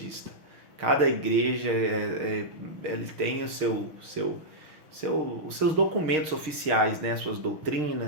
Cada igreja ele tem os seus documentos oficiais, né, suas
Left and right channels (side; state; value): left; late; 6.5 ms